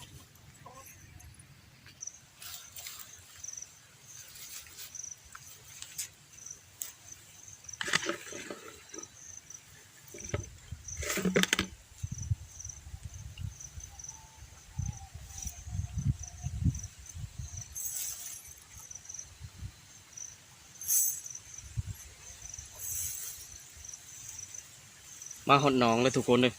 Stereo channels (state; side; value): identical; both; correlation 1.00